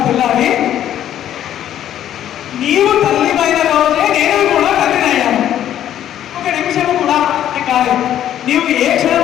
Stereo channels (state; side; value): quieter; right; 11.1 dB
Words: తెల్లారి నీవు తల్లిమైన రోజే నేను కూడా తల్లినయ్యాను, ఒక నిమిషం కూడా కాదు. నీవు ఏ